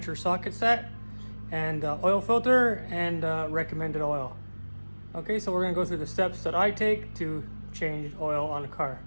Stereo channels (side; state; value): both; inverted; correlation -1.00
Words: or socket set, and oil filter and recommended oil. Okay, so we're going to go through the steps that I take to change oil on a car.